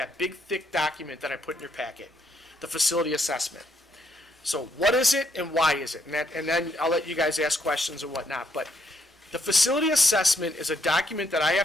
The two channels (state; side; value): normal; both; correlation 0.74